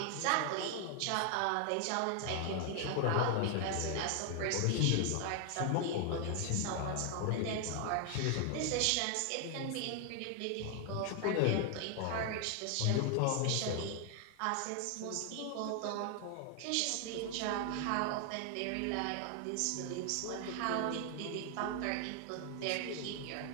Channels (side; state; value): both; different; correlation 0.00